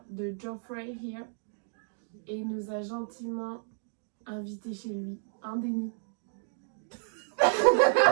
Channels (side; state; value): left; silent; digital silence